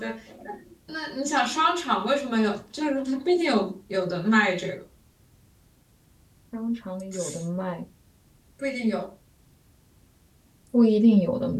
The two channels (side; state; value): both; identical; correlation 1.00